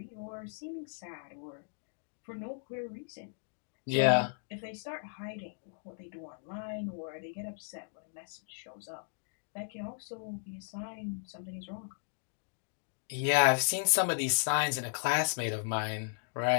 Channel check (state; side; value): silent; right; digital silence